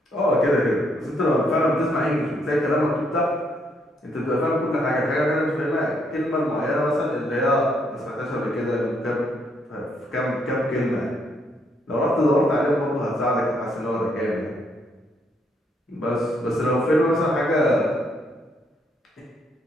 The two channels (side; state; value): both; normal; correlation 0.72